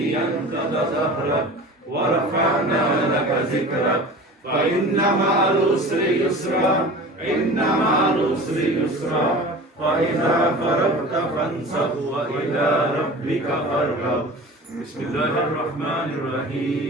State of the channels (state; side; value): normal; both; correlation 0.38